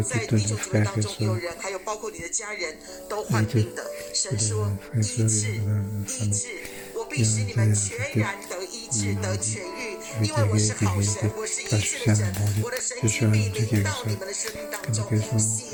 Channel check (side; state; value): both; identical; correlation 1.00